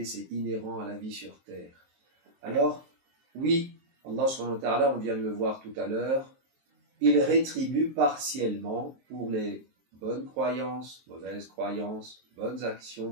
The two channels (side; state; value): left; late; 23 ms